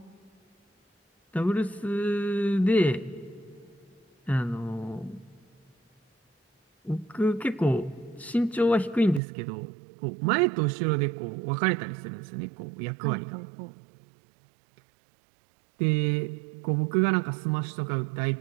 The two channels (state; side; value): drops out; left; at 9.2 s